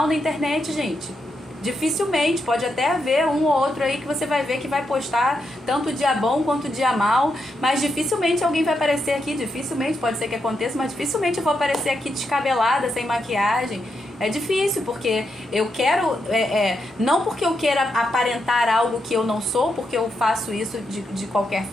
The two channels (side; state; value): both; normal; correlation 0.83